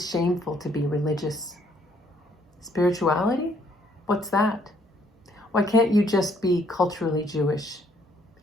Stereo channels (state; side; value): normal; both; correlation 0.66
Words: shameful to be religious. Spirituality? What's that? Why can't you just be culturally Jewish